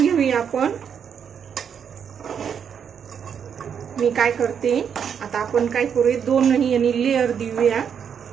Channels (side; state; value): left; quieter; 7.6 dB